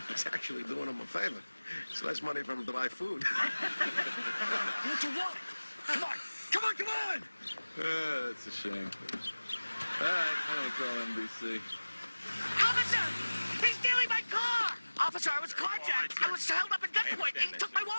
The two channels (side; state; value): both; inverted; correlation -1.00